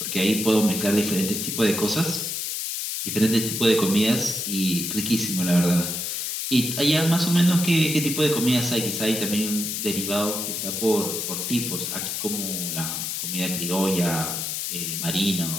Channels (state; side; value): noise; left; hiss, 3 dB below the sound